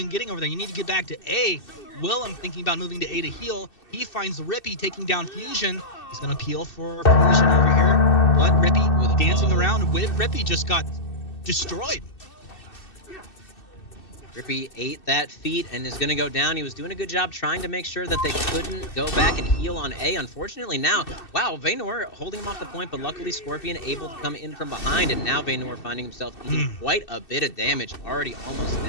getting over there. You need to get back to A. Willem thinking about moving to A to heal. He finds Rippy taking down Fusion. He's going to peel for Fusion over here. But Rippy dancing around with Rippy just got destroyed. Rippy ate that feat and is going to go down. He was doing a good job trying to make sure that they couldn't go back and heal on A. Unfortunately now, wow, Vaynor holding him off the point, but luckily Scorpion able to come in from behind, and now Vaynor finding himself eating quite a bit of damage, already almost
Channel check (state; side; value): late; right; 2.6 ms